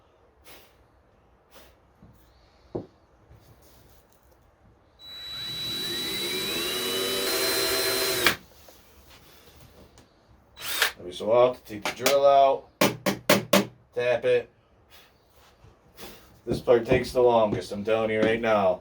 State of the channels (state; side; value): identical; both; correlation 1.00